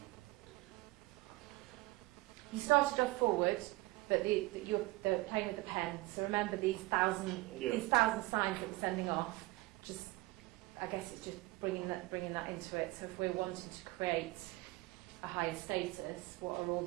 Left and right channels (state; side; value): quieter; left; 20.8 dB